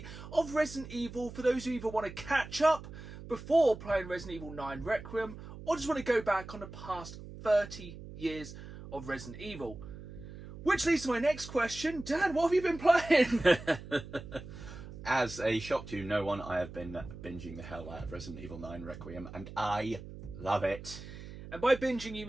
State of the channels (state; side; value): noise; right; hum, 13 dB below the sound